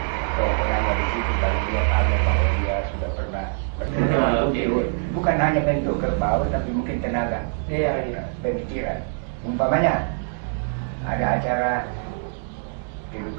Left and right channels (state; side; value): silent; left; 58 dB below the other